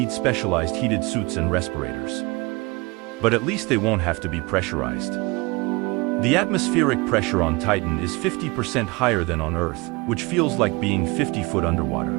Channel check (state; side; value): quieter; left; 24.9 dB